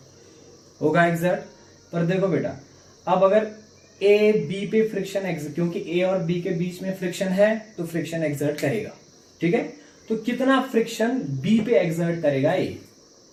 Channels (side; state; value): both; identical; correlation 1.00